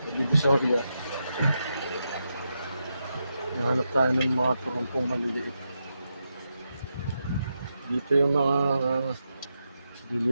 Divisoria. Nahanap tayo ng mga turumpong maliliit. Dito yung mga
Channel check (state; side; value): inverted; both; correlation -0.86